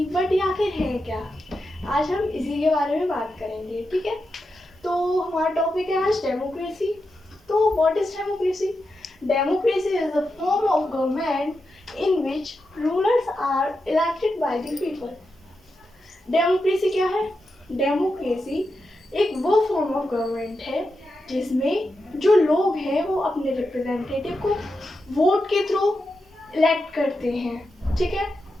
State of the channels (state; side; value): normal; both; correlation 0.88